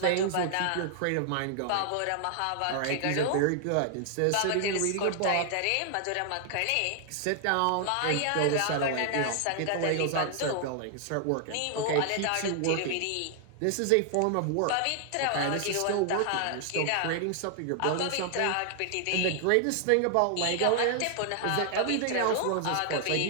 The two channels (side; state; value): both; different; correlation 0.00